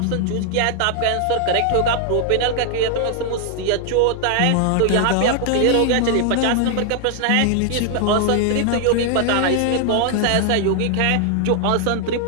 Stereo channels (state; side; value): different; both; correlation 0.00